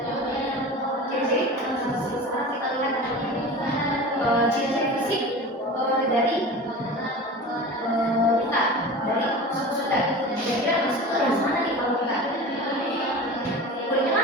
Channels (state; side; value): normal; both; correlation 0.34